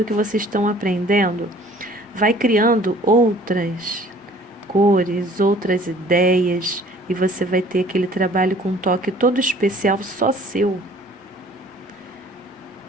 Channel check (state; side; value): normal; both; correlation 0.53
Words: que vocês estão aprendendo, vai criando outras cores, outras ideias, e você vai ter aquele trabalho com um toque todo especial, só seu.